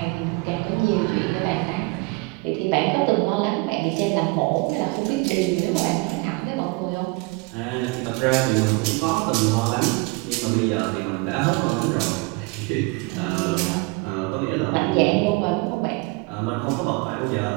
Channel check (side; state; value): left; quieter; 26.5 dB